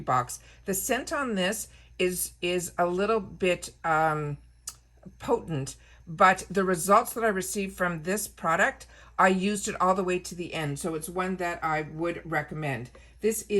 box. The scent on this is a little bit potent, but the results that I received from this product, I used it all the way to the end. So it's one that I would recommend. This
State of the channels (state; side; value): identical; both; correlation 1.00